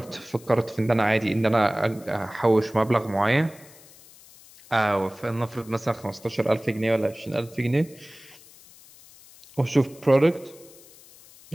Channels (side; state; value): left; noise; hiss, 23 dB below the sound